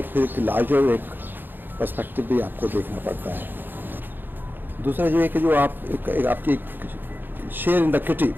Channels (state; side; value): late; left; 0.094 ms